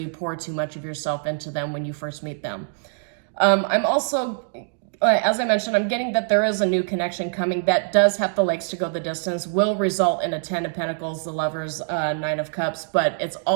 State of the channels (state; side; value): silent; left; digital silence